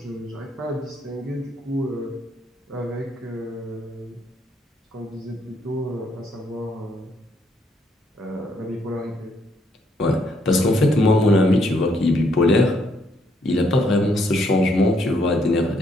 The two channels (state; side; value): normal; both; correlation 0.72